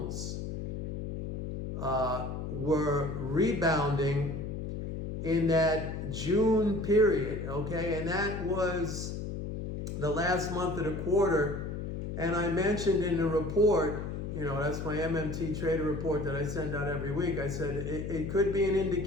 were rebounding in that June period, okay? And that was the last month of the quarter. And I mentioned in the report, that's my MMT trader report that I send out every week. I said it could be an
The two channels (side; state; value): left; noise; hum, 5 dB below the sound